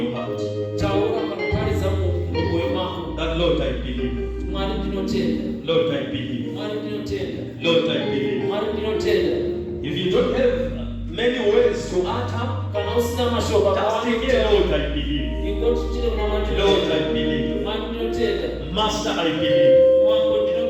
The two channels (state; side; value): identical; both; correlation 1.00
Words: heart Taura panopariza moyo mako. that Lord I believe. Mwari ndinotenda. Lord I believe. Mwari ndinotenda. Lord I believe. Mwari ndinotenda. If you don't have many words to utter, Kana usina mashoba just declare Lord I believe. ingoti chile unamata. Lord I believe. Mwari ndinotenda. Master I believe. Mwango